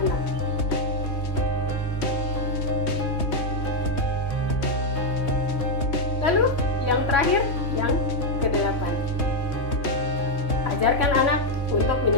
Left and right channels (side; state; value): right; late; 3.2 ms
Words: anak. Lalu yang terakhir, yang kedelapan, ajarkan anak untuk